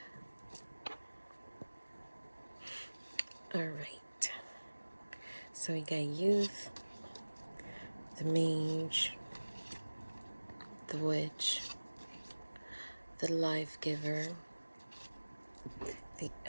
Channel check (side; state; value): both; inverted; correlation -1.00